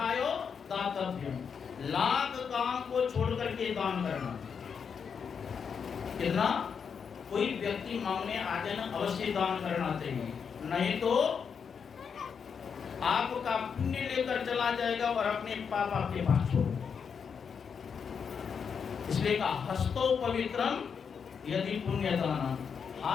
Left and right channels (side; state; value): right; quieter; 6.5 dB